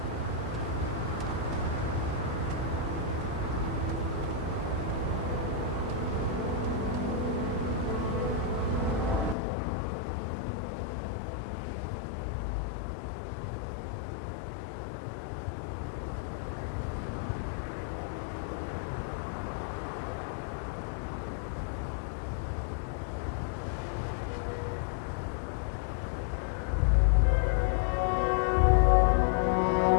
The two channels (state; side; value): drops out; right; at 9.3 s